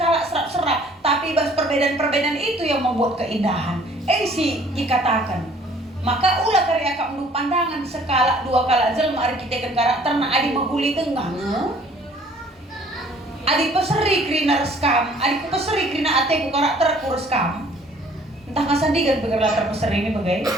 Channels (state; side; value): normal; both; correlation 0.56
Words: serap-serap. Tapi ibas perbedaan-perbedaan itu yang membuat keindahan. Si dikatakan. Maka ulah karya kak menurut pandangan skala dua kala jelma arkiteken karakter na adi menghuli tengah. Adi peseri krina reskam, adi peseri krina ateku karakter ku reskam. Entah ngasandigan begerlah terpeseri ini bagai.